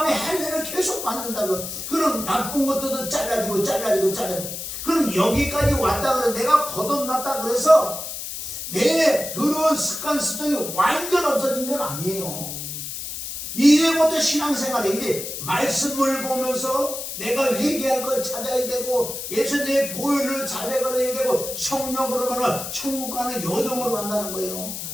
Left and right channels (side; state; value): left; noise; hiss, 7 dB below the sound